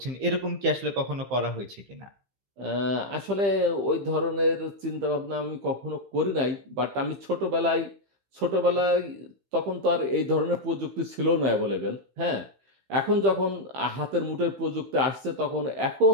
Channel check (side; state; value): left; late; 15 ms